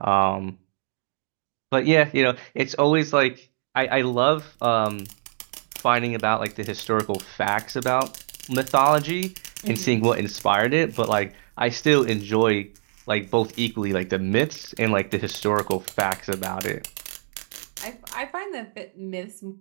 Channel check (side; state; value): left; silent; digital silence